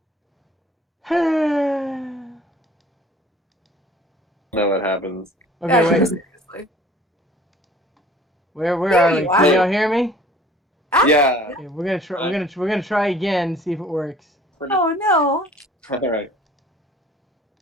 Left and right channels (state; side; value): normal; both; correlation 0.50